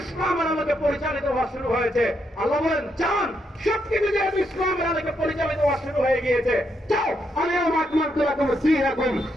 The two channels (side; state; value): both; normal; correlation 0.79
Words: ইসলামের আলোকে পরিচালিত হওয়া শুরু হয়েছে। আল্লাহ বলেন, যান, সবকিছু যেহেতু ইসলামের আলোকে পরিচালিত হওয়া শুরু হয়ে গিয়েছে, যাও, আলিয়াউমা আকমালতু লাকুম দীনাকুম,